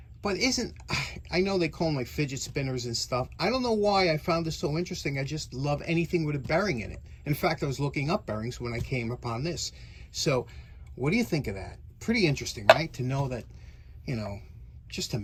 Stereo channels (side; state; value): both; identical; correlation 1.00